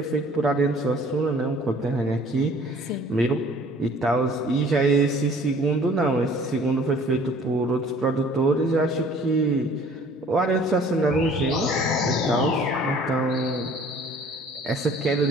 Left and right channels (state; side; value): normal; both; correlation 0.53